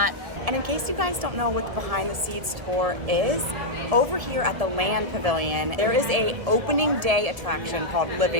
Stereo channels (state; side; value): late; left; 1.7 ms